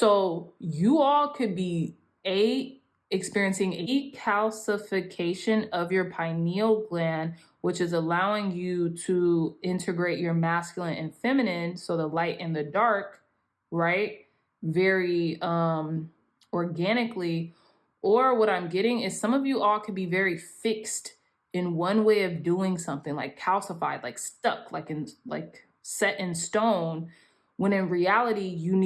you all could be experiencing a calcification of your pineal gland, which is allowing you to integrate your masculine and feminine, so the light and the dark, right? Very organically. Or what I'm getting is some of you all could be very fixed in one way of doing something, like calcified, like stuck, like set in stone, when in reality you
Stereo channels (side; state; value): both; identical; correlation 1.00